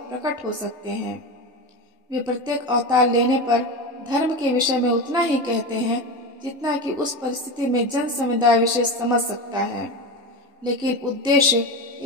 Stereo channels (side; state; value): both; normal; correlation 0.22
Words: प्रकट हो सकते हैं। वे प्रत्येक अवतार लेने पर धर्म के विषय में उतना ही कहते हैं जितना कि उस परिस्थिति में जन समुदाय विशेष समझ सकता है, लेकिन उद्देश्य